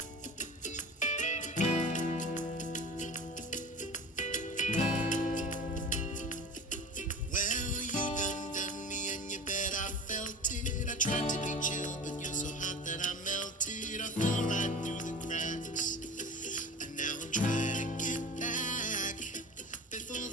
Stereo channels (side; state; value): both; normal; correlation 0.36